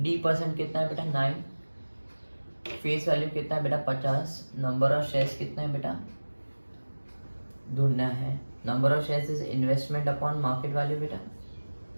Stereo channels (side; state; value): both; inverted; correlation -1.00